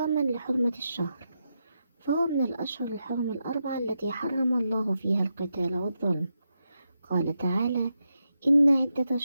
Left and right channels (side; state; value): both; inverted; correlation -0.86